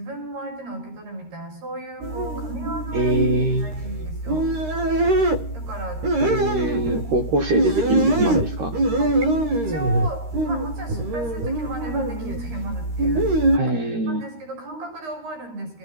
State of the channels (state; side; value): late; left; 13 ms